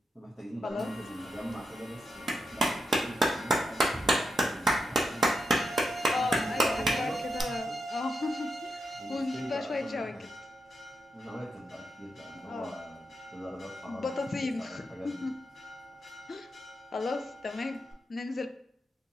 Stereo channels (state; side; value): normal; both; correlation 0.85